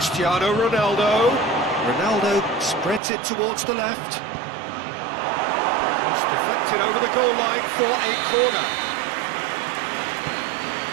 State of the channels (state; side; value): drops out; left; at 3.0 s